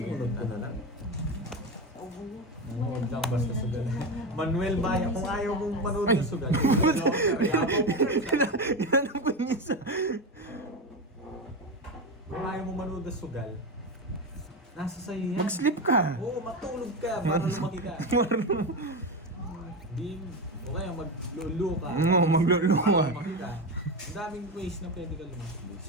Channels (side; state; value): both; normal; correlation 0.17